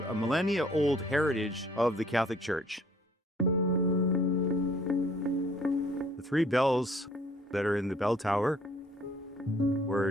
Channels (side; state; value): both; normal; correlation 0.58